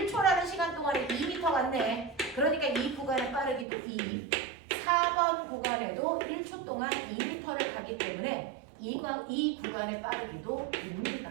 시간 동안에 2m 갔네. 그러니까 이 구간의 빠르기도 2. 4번 구간에도 1초 동안 2m를 가기 때문에 이 구간의 빠르기도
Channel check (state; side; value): drops out; left; at 3.7 s